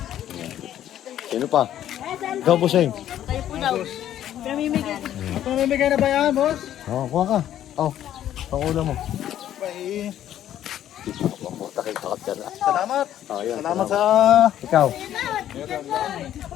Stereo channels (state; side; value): quieter; right; 11.5 dB